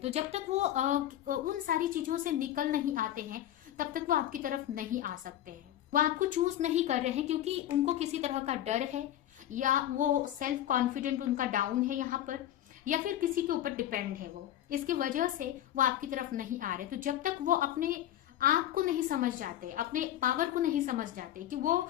जब तक वो उन सारी चीजों से निकल नहीं आते हैं तब तक वो आपकी तरफ नहीं आ सकते हैं। वो आपको चूज नहीं कर रहे हैं क्योंकि उनको किसी तरह का डर है, या वो सेल्फ कॉन्फिडेंट उनका डाउन है यहाँ पर, या फिर किसी के ऊपर डिपेंड है वो, इसकी वजह से वो आपकी तरफ नहीं आ रहे। तो जब तक वो अपने आप को नहीं समझ जाते, अपने पावर को नहीं समझ जाते कि वो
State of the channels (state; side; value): quieter; right; 12.3 dB